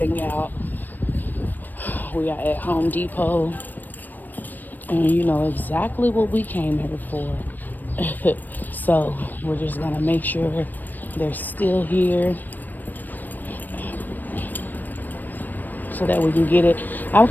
out. We are at Home Depot, and you know exactly what we came here for. So we're just gonna make sure they're still here so that we can get it. I'm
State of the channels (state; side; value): late; right; 0.088 ms